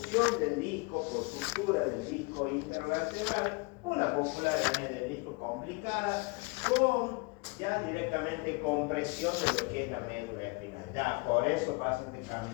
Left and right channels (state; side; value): quieter; right; 28.4 dB